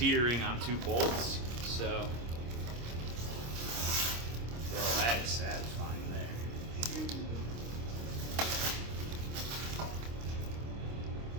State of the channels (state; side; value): late; left; 26 ms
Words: on 2 bolts. So, well, that is satisfying there.